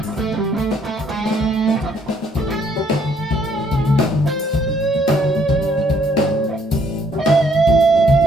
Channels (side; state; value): both; normal; correlation 0.66